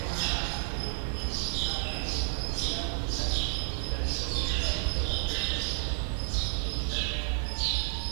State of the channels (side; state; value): left; silent; digital silence